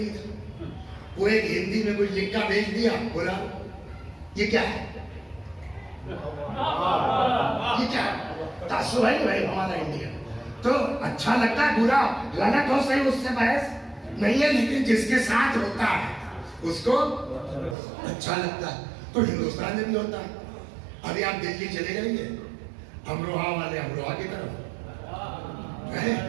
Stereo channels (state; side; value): drops out; left; at 17.8 s